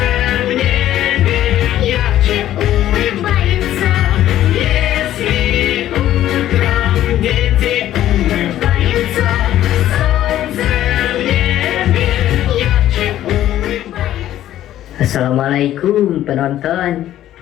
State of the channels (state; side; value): quieter; right; 12.7 dB